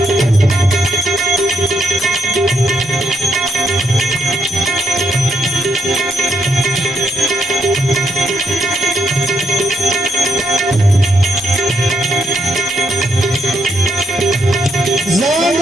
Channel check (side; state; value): both; normal; correlation 0.76